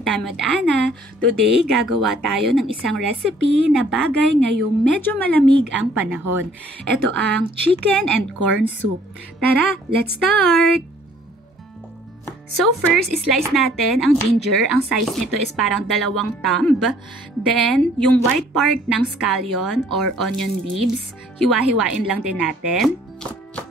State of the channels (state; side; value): normal; both; correlation 0.58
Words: Time with Ana. Today, gagawa tayo ng isang recipe na bagay ngayong medyo malamig ang panahon. Ito ang chicken and corn soup. Tara, let's start! So first, slice natin ang ginger. Ang size nito is parang 2 thumb. Then, yung white part ng scallion or onion leaves, hiwa-hiwain lang din natin.